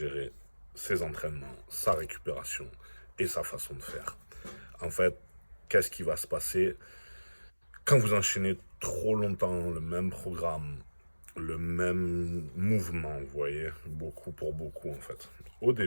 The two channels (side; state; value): both; inverted; correlation -1.00